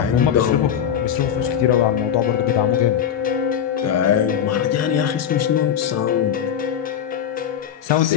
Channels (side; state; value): right; quieter; 9.1 dB